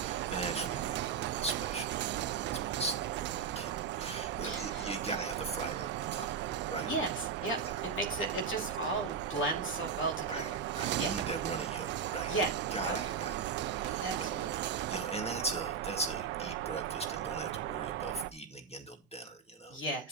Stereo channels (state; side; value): quieter; left; 6.0 dB